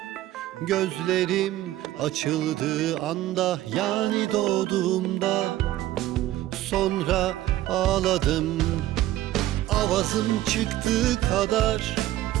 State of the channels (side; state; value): left; quieter; 14.8 dB